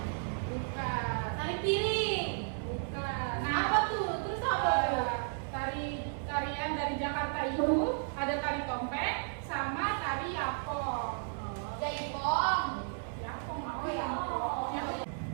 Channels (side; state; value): left; silent; 55 dB below the other